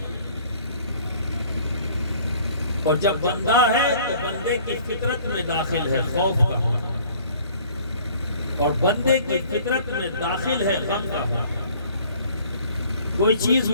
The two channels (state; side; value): inverted; both; correlation -0.53